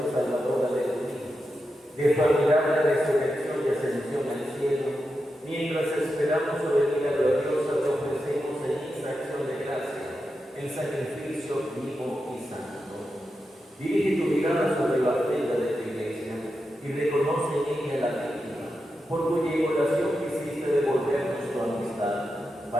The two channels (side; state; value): both; normal; correlation 0.88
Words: salvadora de tu Hijo, de su admirable resurrección y ascensión al cielo, mientras esperamos su venida gloriosa, te ofrecemos en esta acción de gracia el sacrificio vivo y santo. Dirige tu mirada sobre la ofrenda de tu Iglesia y reconoce en ella la víctima, por cuya inmolación quisiste devolvernos tu amistad,